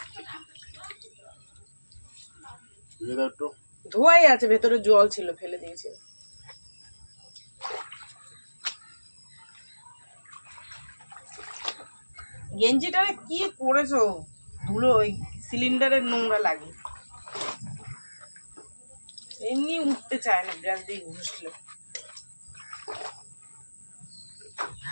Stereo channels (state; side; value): inverted; both; correlation -1.00